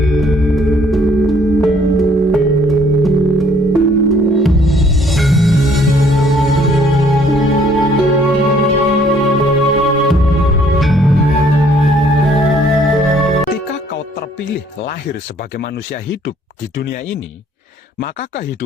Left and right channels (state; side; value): normal; both; correlation 0.61